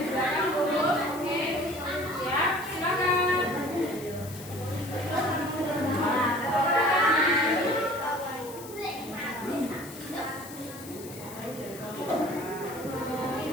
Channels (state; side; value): noise; left; hiss, 16 dB below the sound